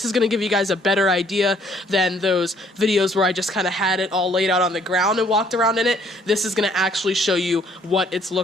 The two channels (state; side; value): normal; both; correlation 0.62